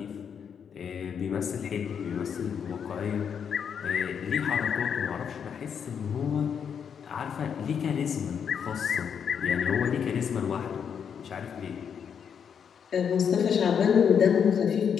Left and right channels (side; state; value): right; quieter; 7.4 dB